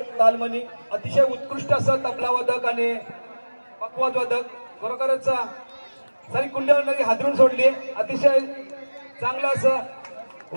तालमनी अतिशय उत्कृष्ट असं तबला वादक आणि पकवाद वादक, खरोखरच सारी कुंडली हादरून सोडली। अतिशय चांगलं असं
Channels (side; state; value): both; inverted; correlation -1.00